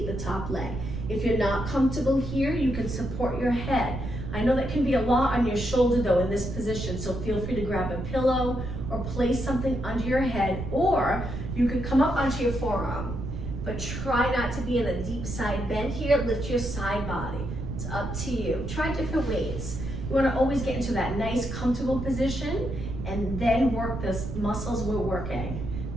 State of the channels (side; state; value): right; noise; rumble, 6 dB below the sound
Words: the top leg. If you're not comfortable here, you can support your head. I know that can be a lot on your shoulder though in this position, so feel free to grab a pillow or place something under your head, or you can come up onto your forearm. But try not to be in a deep side bend here. Lift your side body. It's up to you. Try different ways. You want to always get into that nice comfortable position and then work the muscles we're working.